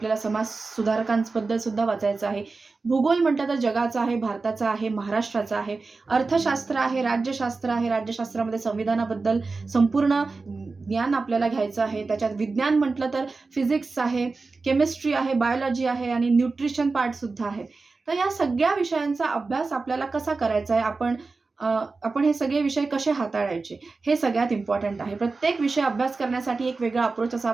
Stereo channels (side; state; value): left; quieter; 3.9 dB